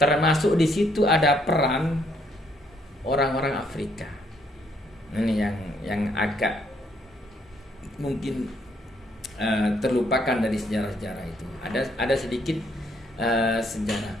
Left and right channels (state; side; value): normal; both; correlation 0.70